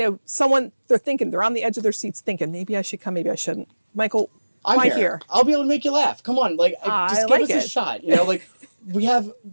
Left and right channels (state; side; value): inverted; both; correlation -1.00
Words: on the edge of their seats thinking, maybe I should come, maybe I shouldn't. Michael, why here? I'll be able to make you laugh. Come on. Just give us a shot.